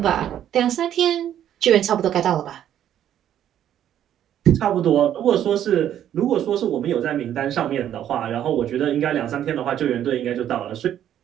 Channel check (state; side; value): quieter; left; 10.7 dB